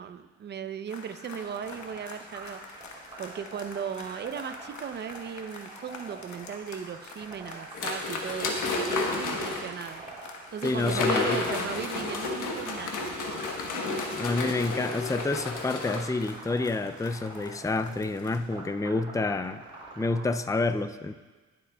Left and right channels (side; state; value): both; normal; correlation 0.48